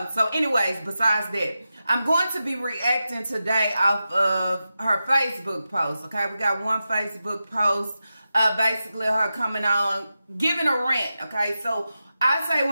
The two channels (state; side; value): inverted; both; correlation -0.91